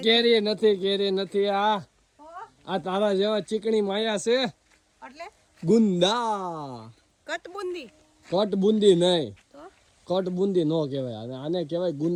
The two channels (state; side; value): identical; both; correlation 1.00